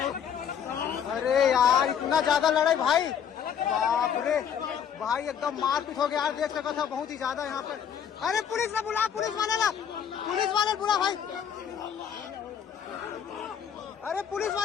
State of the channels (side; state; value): right; quieter; 8.2 dB